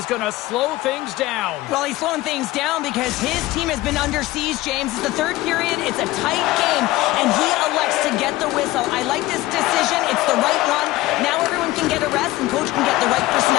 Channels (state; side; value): quieter; right; 17.8 dB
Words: going to slow things down. Well, he's slowing things down because his team has been under siege, James. It's the third period. It's a tight game, and he elects to get the whistle. I like this decision. It's the right one. Now everyone can get a rest, and coach can get the right